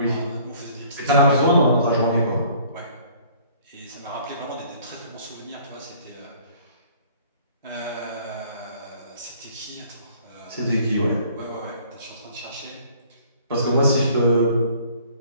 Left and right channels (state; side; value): inverted; both; correlation -0.56